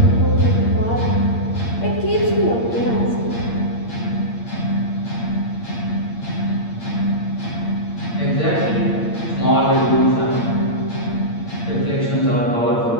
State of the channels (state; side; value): late; right; 8.7 ms